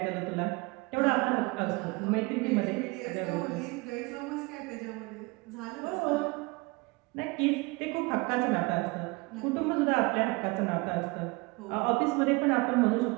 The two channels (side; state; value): left; quieter; 26.0 dB